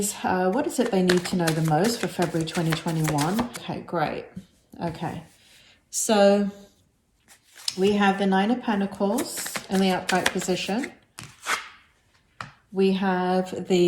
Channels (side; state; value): both; identical; correlation 1.00